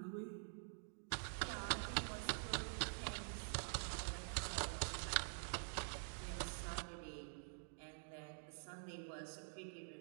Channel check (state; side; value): silent; left; digital silence